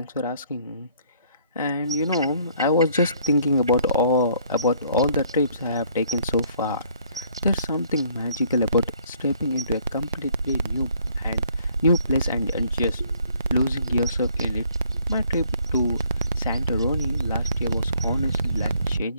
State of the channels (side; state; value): both; inverted; correlation -0.63